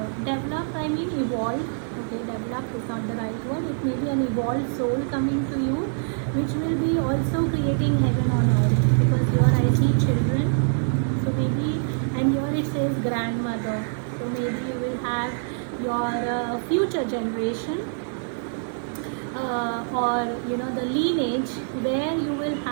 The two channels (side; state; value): left; silent; digital silence